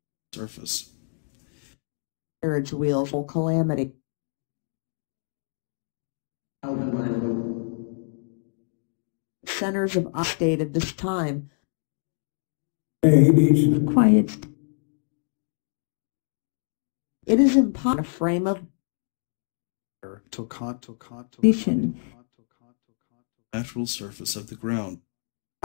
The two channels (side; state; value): right; silent; digital silence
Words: Surface. carriage wheels full calamity centers of state at this time Babies. quiet it is impossible a frame of vision Natural surface of the ground.